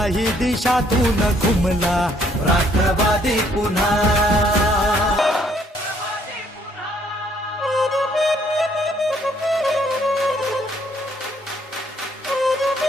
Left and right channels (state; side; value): normal; both; correlation 0.66